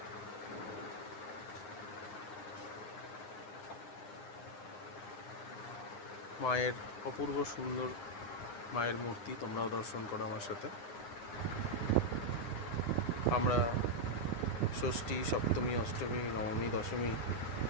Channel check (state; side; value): late; right; 9.8 ms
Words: মায়ের অপূর্ব সুন্দর মায়ের মূর্তি, তোমরাও দর্শন করো আমার সাথে। আমরা ষষ্ঠী, সপ্তমী, অষ্টমী, নবমী, দশমী